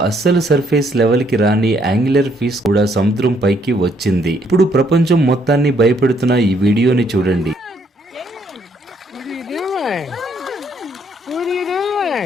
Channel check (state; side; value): normal; both; correlation 0.69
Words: అస్సలు surface level కి రాని angular fish కూడా సముద్రం పైకి వచ్చింది. ఇప్పుడు ప్రపంచం మొత్తాన్ని భయపెడుతున్న ఈ వీడియోని చూడండి. What are you